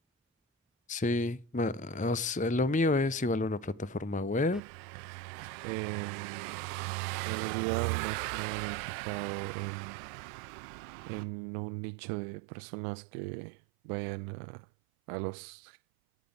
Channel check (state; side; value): drops out; left; at 4.6 s